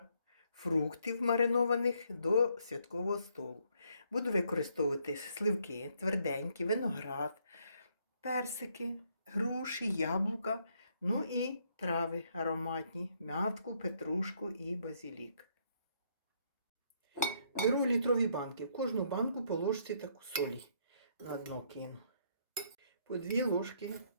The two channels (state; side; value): inverted; both; correlation -0.71